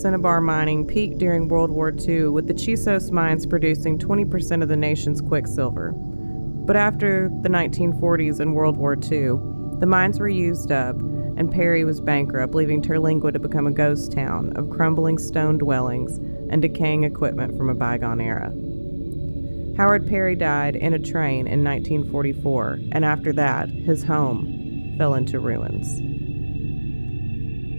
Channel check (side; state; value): both; inverted; correlation -1.00